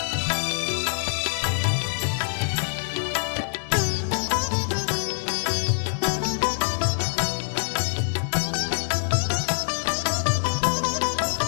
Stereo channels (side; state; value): right; silent; digital silence